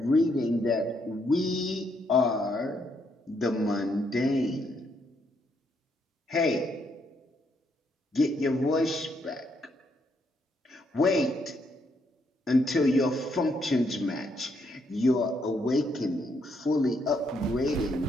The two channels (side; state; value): both; normal; correlation 0.75